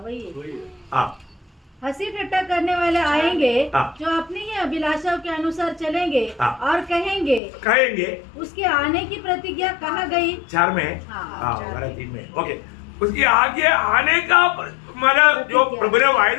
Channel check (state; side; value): drops out; right; at 7.4 s